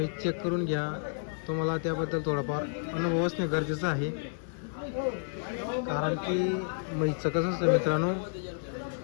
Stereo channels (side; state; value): right; silent; 57 dB below the other